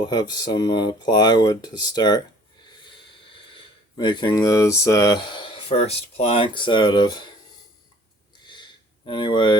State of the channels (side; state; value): both; normal; correlation 0.54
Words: have some plywood to start making those first planks out of.